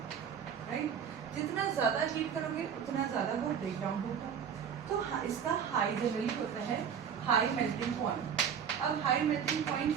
राइट, जितना ज्यादा हीट करोगे उतना ज्यादा वो ब्रेक डाउन होगा. तो इसका हाई जनरली होता है हाई मेल्टिंग पॉइंट. अब हाई मेल्टिंग पॉइंट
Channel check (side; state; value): left; quieter; 7.7 dB